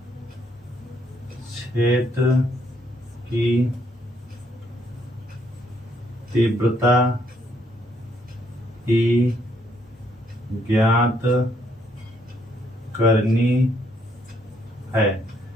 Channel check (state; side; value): normal; both; correlation 0.71